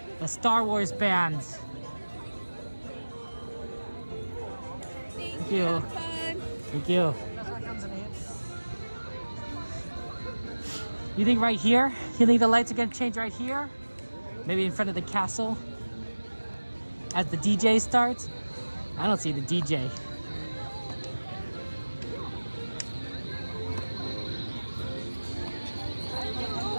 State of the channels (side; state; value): both; inverted; correlation -1.00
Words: The Star Wars bands. Thank you. Thank you. You think right here? You think the lights are gonna change right here? Maybe in front of the castle? As the DJ starts? I don't see the DJ.